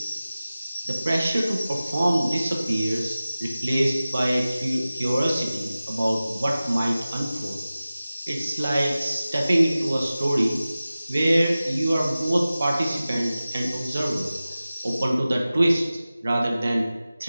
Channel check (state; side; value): inverted; both; correlation -0.96